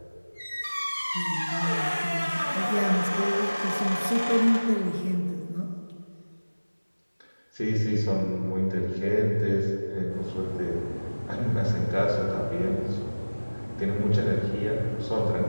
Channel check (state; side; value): inverted; both; correlation -1.00